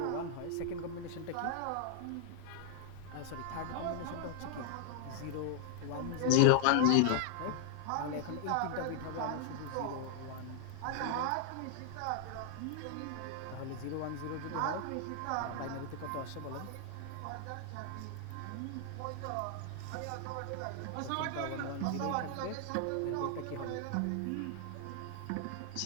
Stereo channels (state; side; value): different; both; correlation -0.01